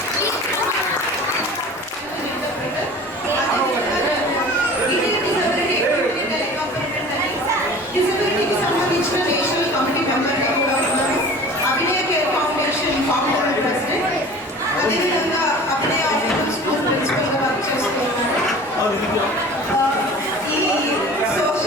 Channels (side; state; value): both; normal; correlation 0.42